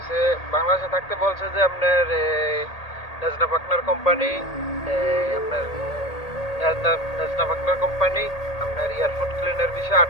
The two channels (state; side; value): late; right; 1.8 ms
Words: বাংলাদেশে থাকতে বলছে যে আপনার নেজনা পার্টনার কোম্পানি, আপনার নেজনা পার্টনার কোম্পানি আপনার এয়ারপোর্ট ক্লিনার বিষয়ে 8